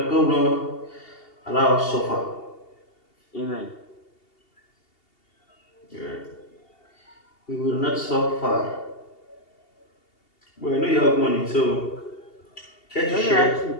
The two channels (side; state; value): right; late; 2.8 ms